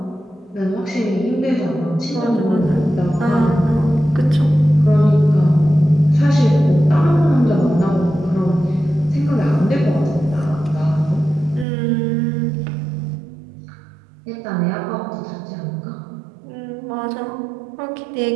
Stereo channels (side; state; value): left; drops out; at 11.7 s